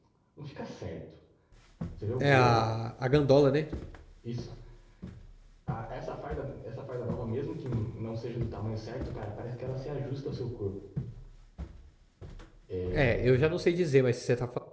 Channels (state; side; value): identical; both; correlation 1.00